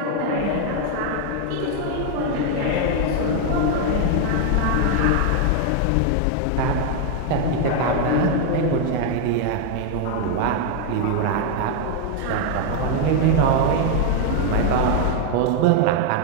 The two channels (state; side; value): different; both; correlation 0.01